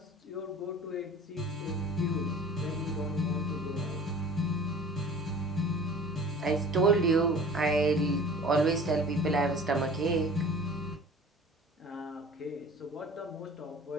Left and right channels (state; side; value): normal; both; correlation 0.44